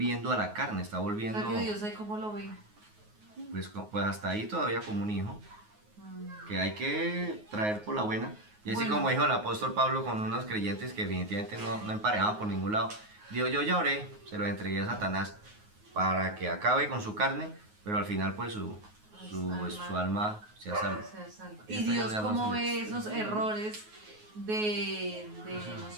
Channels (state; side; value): late; left; 9.5 ms